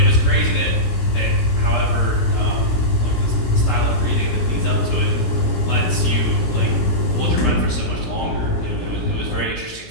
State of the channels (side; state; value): right; late; 17 ms